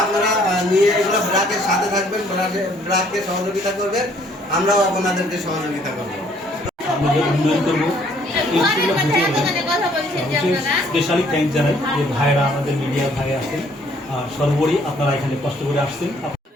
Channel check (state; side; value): normal; both; correlation 0.62